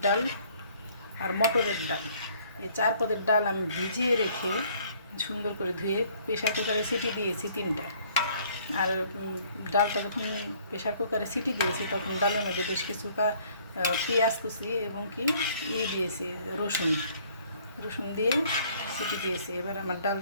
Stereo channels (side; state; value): both; inverted; correlation -0.60